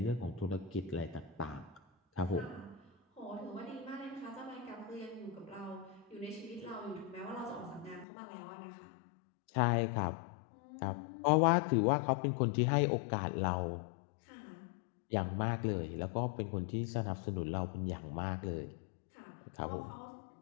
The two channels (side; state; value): right; drops out; at 8.1 s